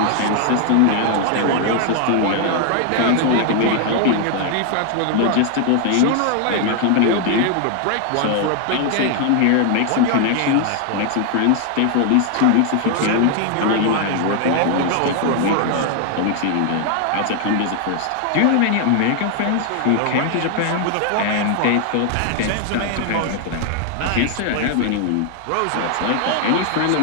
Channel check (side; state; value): both; different; correlation 0.00